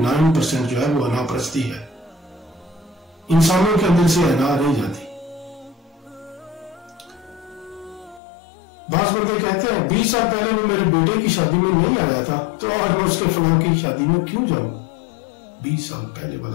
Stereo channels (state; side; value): drops out; right; at 8.2 s